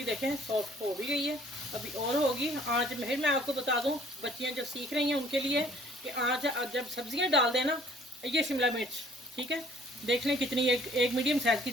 देखें सॉफ्ट हो भी गई है, अभी और होगी आँच। फिर मैं आपको बता दूं, बच्चियां जो सीख रही हैं उनके लिए कि आँच जब सब्जियां डाल देना, ये शिमला मिर्च, ठीक है, देख लें कितनी, एक मीडियम साइज़ की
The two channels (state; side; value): normal; both; correlation 0.57